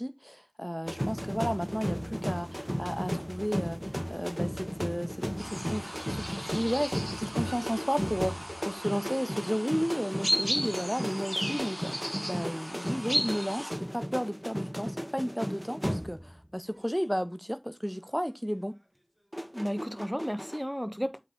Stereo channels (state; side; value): identical; both; correlation 1.00